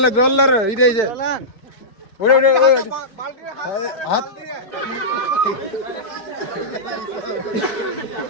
লে জল লে রে এই যে ওরে ওরে হাত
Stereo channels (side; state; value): right; late; 4.6 ms